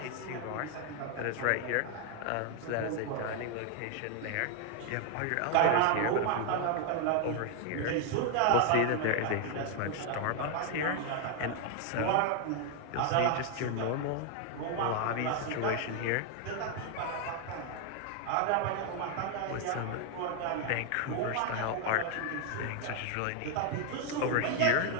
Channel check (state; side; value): different; both; correlation 0.00